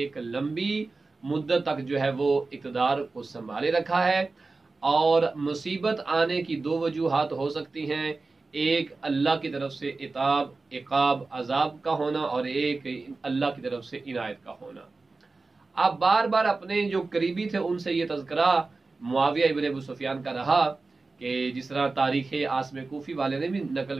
लंबी मुद्दत तक जो है वो इक़्तिदार को संभाले रखा है और मुसीबत आने की दो वजूहात हो सकती हैं, एक अल्लाह की तरफ से इक़ाब अज़ाब का होना और एक अल्लाह की तरफ से इनायत का होना। अब बार बार अपने जो करीबी थे उनसे ये तज़किरा मुआविया इब्न अबू सुफियान का रहा कि जिस तरह तारीख़ आसम कूफ़ी वाले ने भी नकल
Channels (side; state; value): left; quieter; 3.7 dB